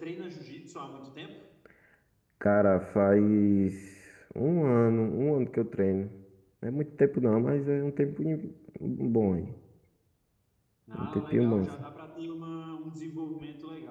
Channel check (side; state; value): both; identical; correlation 1.00